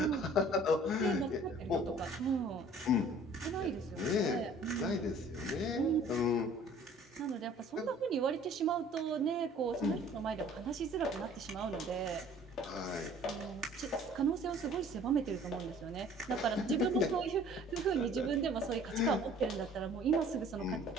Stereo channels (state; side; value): normal; both; correlation 0.52